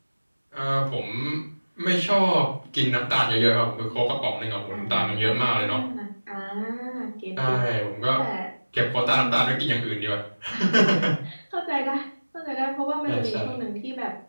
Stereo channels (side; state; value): both; inverted; correlation -1.00